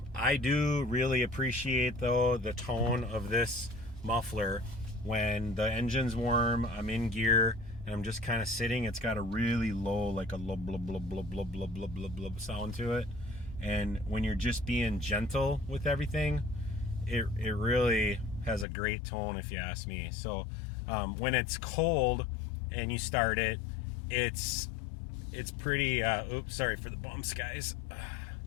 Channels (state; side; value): drops out; right; at 18.7 s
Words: I do really appreciate, though, the tone of this muffler when the engine's warm, I'm in gear, and I'm just kind of sitting. It's got a really low, like a low blub blub blub blub blub blub blub blub sound to it. And when you're just being gentle with everything, it really has a great tone, if you ask me. So when it's cold and you start it, it's pretty, oops, sorry for the bumps, guys.